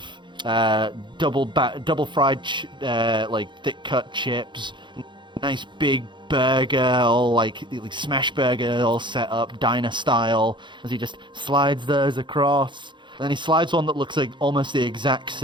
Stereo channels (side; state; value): left; late; 0.23 ms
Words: double fried thick cut chips, nice big burger, all like smash burger, all set up diner style. As he just slides those across, and then he slides one that looks like almost the exact